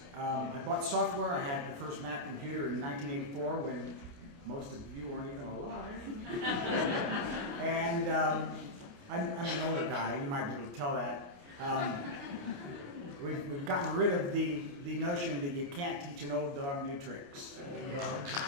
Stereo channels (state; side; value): late; left; 29 ms